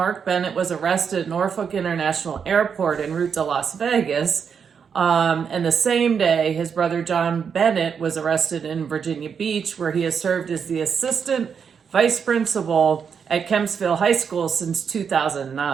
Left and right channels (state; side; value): quieter; left; 6.7 dB